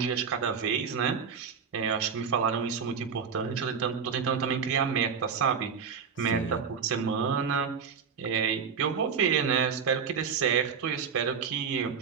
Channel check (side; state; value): left; quieter; 6.4 dB